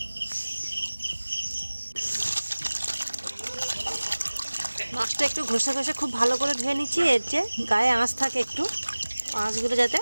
মাছটা একটু ঘষে ঘষে খুব ভালো করে ধুয়ে নিচ্ছি। এর যে গায়ে আঁশ থাকে, একটু আঁশগুলো যাতে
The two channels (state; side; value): inverted; both; correlation -1.00